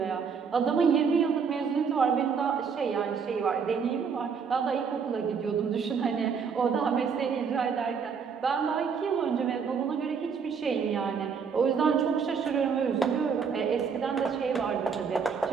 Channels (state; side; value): quieter; left; 6.2 dB